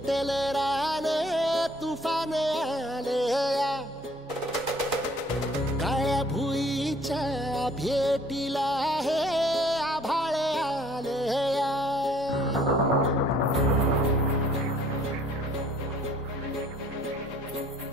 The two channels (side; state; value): both; normal; correlation 0.57